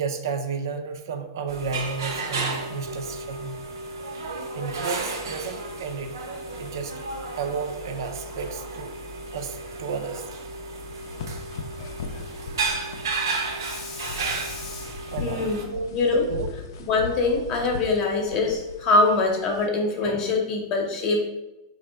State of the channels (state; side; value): normal; both; correlation -0.09